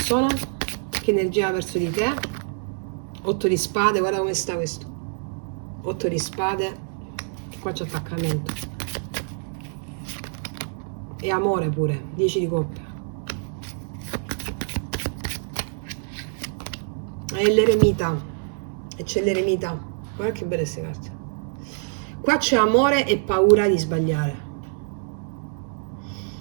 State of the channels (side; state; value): left; silent; 61 dB below the other